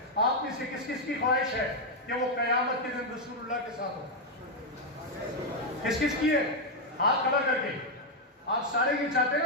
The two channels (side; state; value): both; normal; correlation 0.01